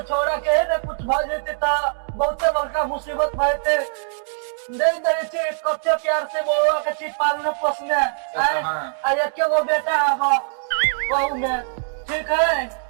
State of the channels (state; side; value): silent; left; digital silence